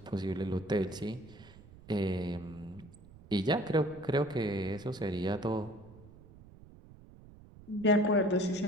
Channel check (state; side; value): noise; right; rumble, 21 dB below the sound